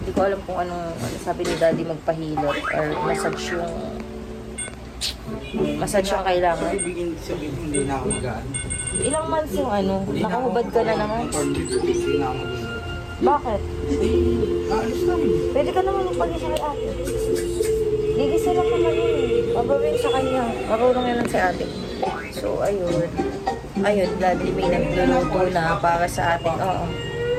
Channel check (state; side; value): identical; both; correlation 1.00